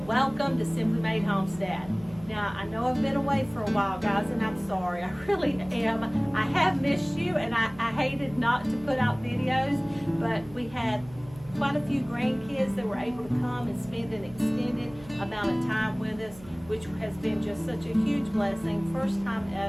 welcome to Simply Made Homestead. Now, I know I've been away for a while, guys, and I'm sorry. I really am. I have missed you, and I hated not to put out videos, but we had quite a few grandkids that were able to come and spend an extended amount of time with us, which has been just such a huge blessing. First time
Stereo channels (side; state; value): right; noise; hum, 20 dB below the sound